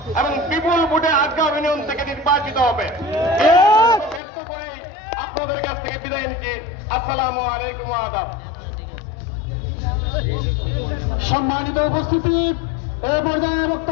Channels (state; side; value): drops out; right; at 4.2 s